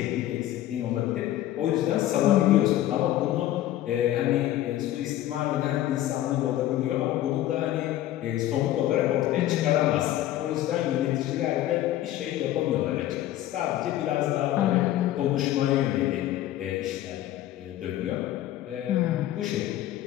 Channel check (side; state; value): right; quieter; 13.7 dB